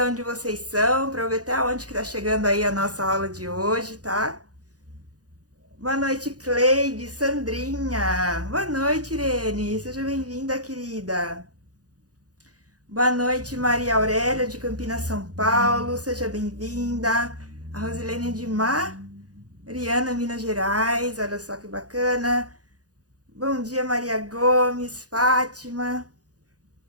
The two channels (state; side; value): late; left; 0.68 ms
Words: onde vocês são, pra eu ver até onde que tá chegando aí a nossa aula de hoje, tá? Boa noite, Cleide, Sandrinha. Boa noite, Irene. Seja bem-vinda, querida. Boa noite, Maria Aurélia, de Campinas, São Paulo. Seja bem-vinda. A Rosilene de Mariana, Minas Gerais. Olha só que bacana. Bom dia, Maria Gomes, Fátima.